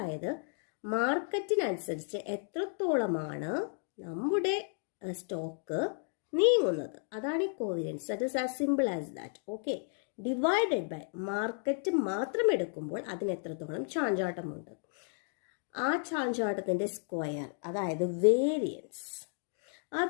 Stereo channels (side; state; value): right; silent; 56 dB below the other